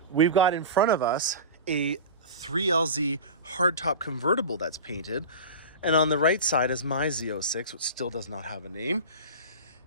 we've got in front of us a 3LZ hardtop convertible that's painted. And on the right side is my Z06, which still does not have a name.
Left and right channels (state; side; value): inverted; both; correlation -0.31